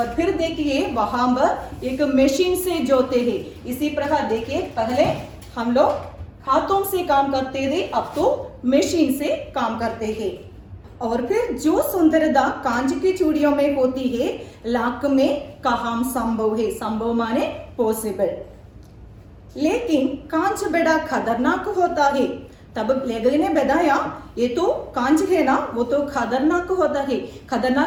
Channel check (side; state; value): both; identical; correlation 1.00